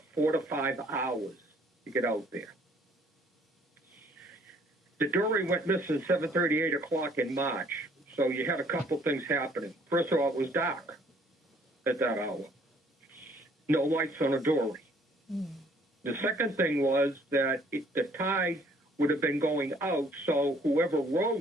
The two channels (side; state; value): both; normal; correlation 0.60